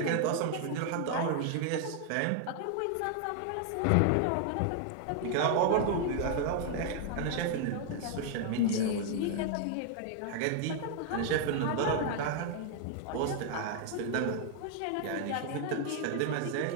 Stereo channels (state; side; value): different; both; correlation 0.00